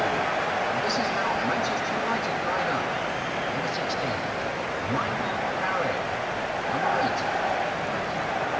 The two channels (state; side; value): identical; both; correlation 1.00